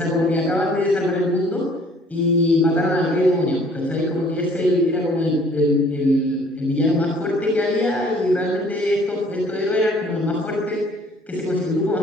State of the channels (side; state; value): both; normal; correlation 0.57